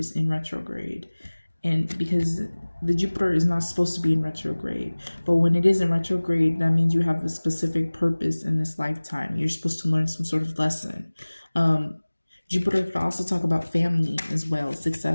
in retrograde. And because the Jupiter is not supposed to be in retrograde, but when it is in retrograde, that means you have a specific purpose in this lifetime. You're supposed to learn some sort of lesson. Jupiter could also talk about family as well,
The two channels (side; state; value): both; inverted; correlation -1.00